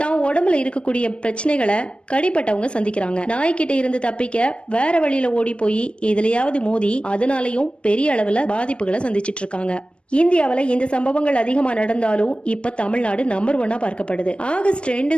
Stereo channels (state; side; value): late; right; 0.058 ms